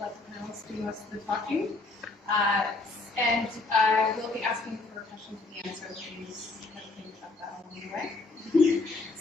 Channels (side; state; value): right; quieter; 3.3 dB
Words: the panelists do most of the talking. And I will be asking for questions at the end, so please think about that along the way.